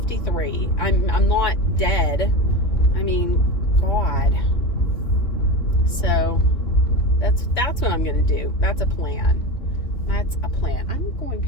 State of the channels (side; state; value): right; late; 3.0 ms